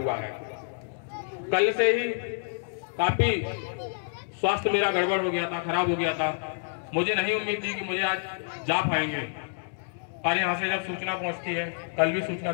है। कल से ही काफी स्वास्थ्य मेरा गड़बड़ हो गया था, खराब हो गया था। मुझे नहीं उम्मीद थी कि मुझे आज जा पाएंगे, और यहाँ से जब सूचना पहुंचती है, कल भी सूचना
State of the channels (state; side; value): silent; right; 59 dB below the other